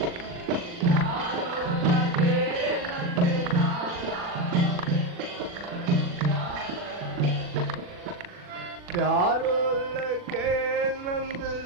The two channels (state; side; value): late; left; 40 ms